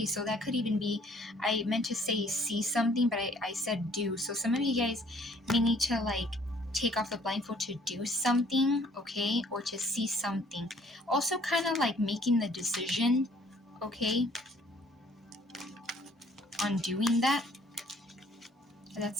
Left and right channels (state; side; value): normal; both; correlation 0.59